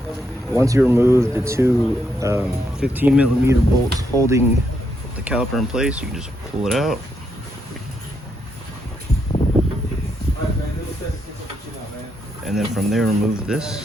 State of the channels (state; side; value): normal; both; correlation 0.78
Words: Once you remove the two 15mm bolts holding the caliper in place, you can just pull it out. And then from there, remove